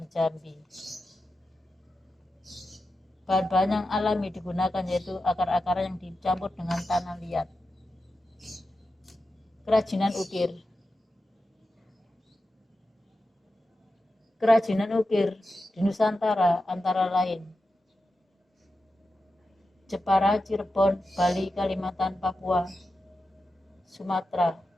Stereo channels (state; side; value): normal; both; correlation 0.91